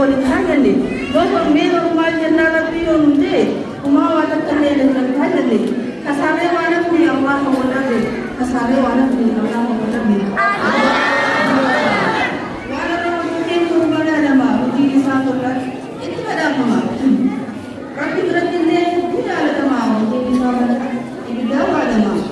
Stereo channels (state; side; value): identical; both; correlation 1.00